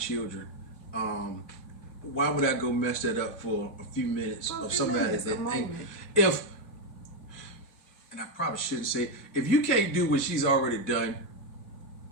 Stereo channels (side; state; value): right; late; 2.9 ms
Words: Why would I go mess that up for a few minutes For a of few somebody minutes, that a ain't? moment. If, and I probably shouldn't say, if you can't do what she's already done,